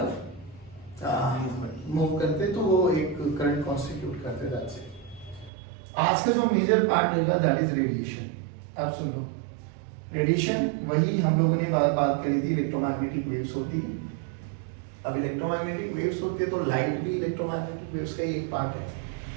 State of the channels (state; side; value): drops out; left; at 5.5 s